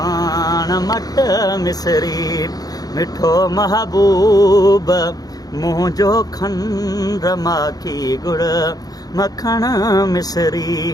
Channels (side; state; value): right; late; 0.18 ms